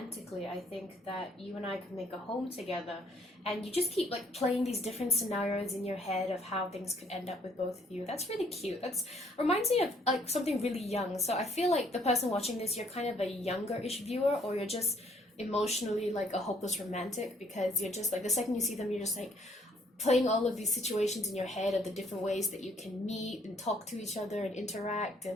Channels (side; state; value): both; normal; correlation 0.64